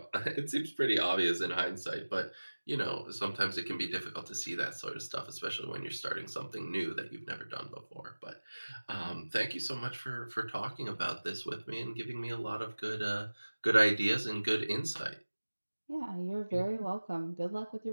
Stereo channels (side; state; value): both; inverted; correlation -1.00